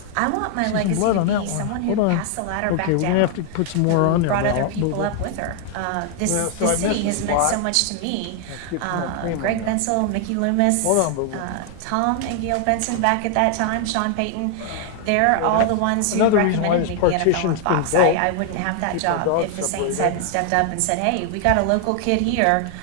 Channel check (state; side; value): different; both; correlation 0.00